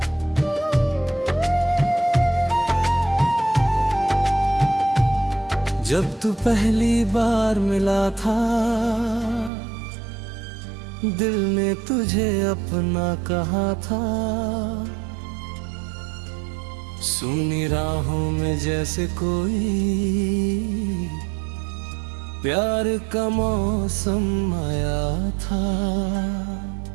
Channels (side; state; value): left; drops out; at 9.5 s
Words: जब तू पहली बार मिला था दिल ने तुझे अपना कहा था। सुनी राहों में जैसे कोई प्यार का मौसम आया था।